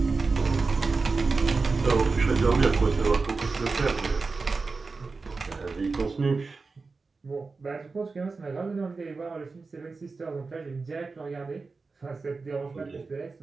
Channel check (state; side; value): quieter; left; 4.1 dB